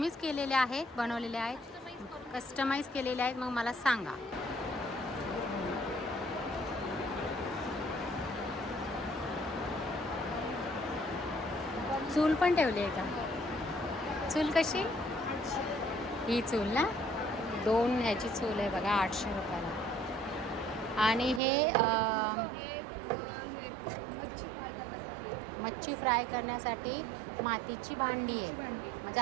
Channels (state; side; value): drops out; left; at 21.4 s